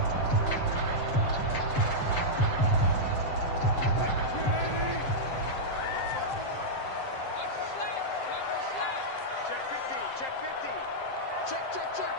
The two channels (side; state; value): right; late; 7.6 ms